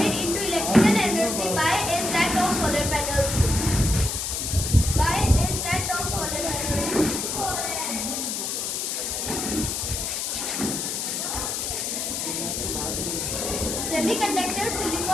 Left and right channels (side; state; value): left; noise; hiss, 2 dB below the sound